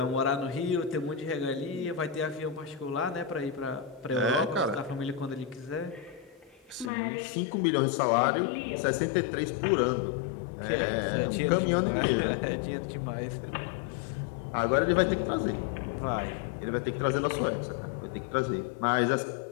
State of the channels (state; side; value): drops out; right; at 6.9 s